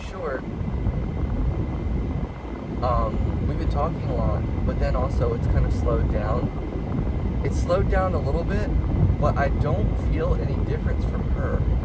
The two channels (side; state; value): both; identical; correlation 1.00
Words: short, we've been talking a lot, but then also it's kind of slowed down. It's slowed down a little bit, but I don't feel any difference from her.